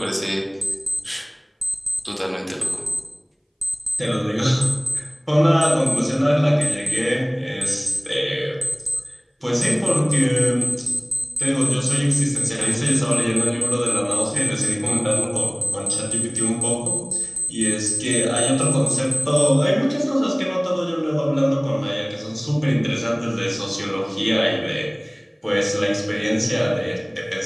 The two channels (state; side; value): identical; both; correlation 1.00